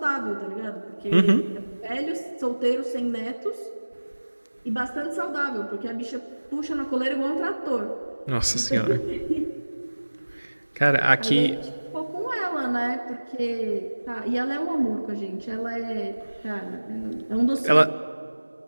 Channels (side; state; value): both; inverted; correlation -1.00